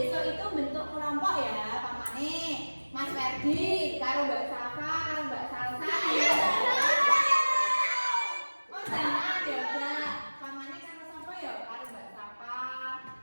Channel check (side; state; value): both; inverted; correlation -1.00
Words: itu bentuk kelompok ya, pamane Mas Ferdi, karo Mbak Safa, karo Mbak Salsa. Oh jangan ya, Mbak. Pamane karo sapa ya? Karo Mbak Safa,